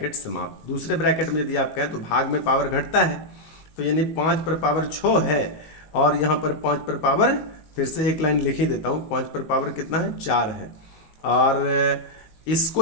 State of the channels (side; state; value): right; late; 19 ms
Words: समाप्त। दूसरे ब्रैकेट में यदि आप कहें तो भाग में पावर घटता है, तो यानी 5 पर पावर 6 है और यहाँ पर 5 पर पावर फिर से एक लाइन लिख ही देता हूँ, 5 पर पावर कितना है 4 है, और